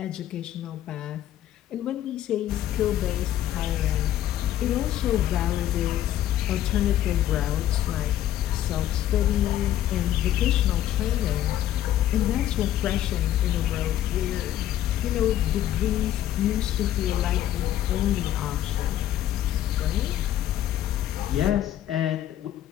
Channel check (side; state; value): right; quieter; 12.2 dB